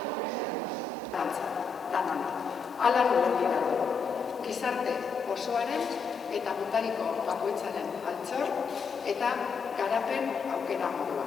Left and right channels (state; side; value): quieter; right; 5.2 dB